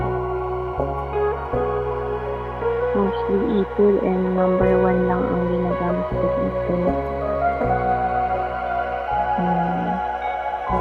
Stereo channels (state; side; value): identical; both; correlation 1.00